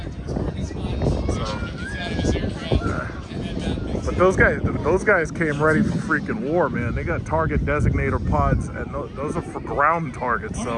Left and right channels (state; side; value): identical; both; correlation 1.00